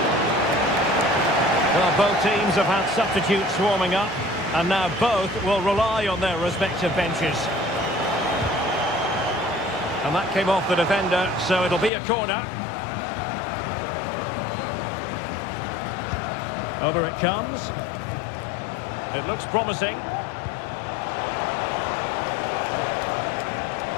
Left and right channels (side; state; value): right; drops out; at 11.9 s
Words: Well, both teams have had substitutes warming up, and now both will rely on their respective benches. And that came off the defender, so it'll be a corner. Over it comes. It looks promising.